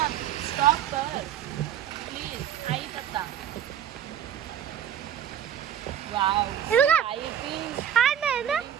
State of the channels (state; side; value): quieter; left; 9.8 dB